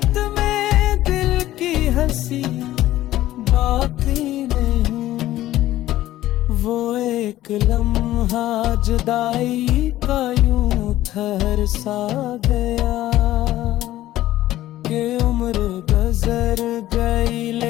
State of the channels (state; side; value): quieter; right; 14.7 dB